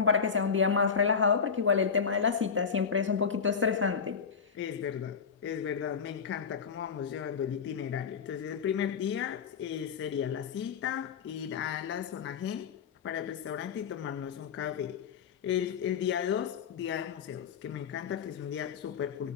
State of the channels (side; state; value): right; quieter; 6.5 dB